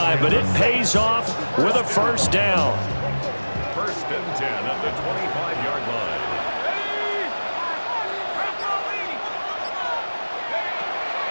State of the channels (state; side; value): inverted; both; correlation -1.00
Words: but it pays off with a first down. First and 10 at the 25-yard line.